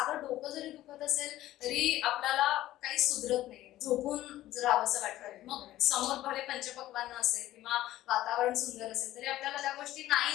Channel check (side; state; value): right; quieter; 14.8 dB